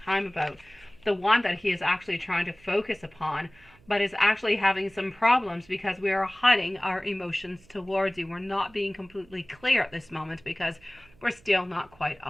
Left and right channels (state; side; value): noise; right; hum, 28 dB below the sound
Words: about, the one that he is actually trying to focus upon, but is actually having some problems because we are hiding our emotions towards you. We're not being completely clear at this moment because we're still not quite